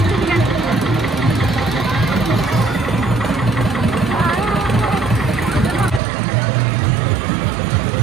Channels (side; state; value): left; drops out; at 6.0 s